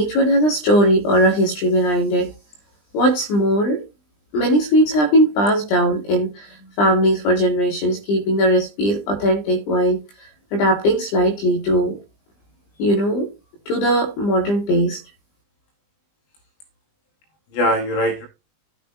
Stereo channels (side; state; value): right; late; 20 ms